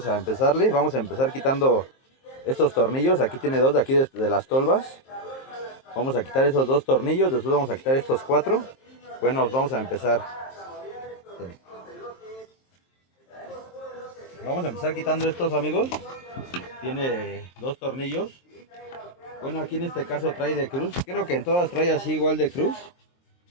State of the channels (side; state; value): right; late; 23 ms